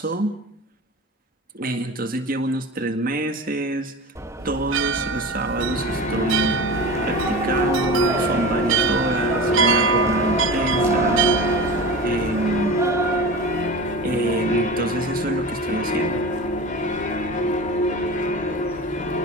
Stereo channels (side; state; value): both; normal; correlation 0.32